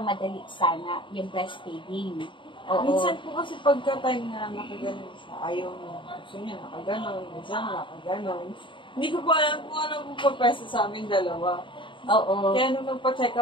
sana yung breastfeeding. Oo. Minsan po kasi pagka-time na nakaganon siya, ayaw niya. Gusto niya nakaganon, minsan nakaganon. Hindi ko pa alam kung ano po papesa sa amin dalawa. Oo. Kaya nung nagpa-check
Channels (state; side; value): late; right; 0.24 ms